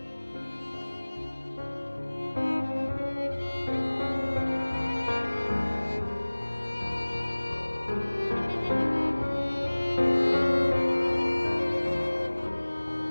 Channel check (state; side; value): inverted; both; correlation -1.00